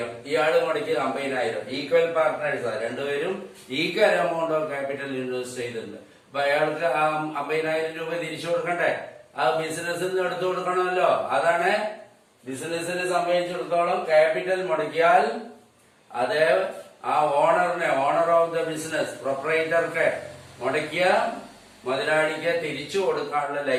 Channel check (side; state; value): both; identical; correlation 1.00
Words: ഇയാള് മുടക്കിയത് 50,000. ഈക്വൽ പാർട്ട്നേഴ്സാണ്. 2 പേരും equal amount of capital invest ചെയ്തിട്ടുണ്ട്. അപ്പൊ അയാൾക്ക് ആ 50,000 രൂപ തിരിച്ചു കൊടുക്കണ്ടേ? ആ ബിസിനസ്സിൽ നിന്ന് എടുത്തു കൊടുക്കണമല്ലോ. അതാണ് ബിസിനസിനെ സംബന്ധിച്ചിടത്തോളം ക്യാപിറ്റൽ മുടക്കിയാൽ അത് ആ ഓണറിനെ, ഓണർ ഓഫ് ദ ബിസിനസ്, പ്രൊപ്പറേറ്റർക്ക് മുടക്കിയ മുതലാളിക്ക് തിരിച്ചു കൊടുക്കാനുള്ള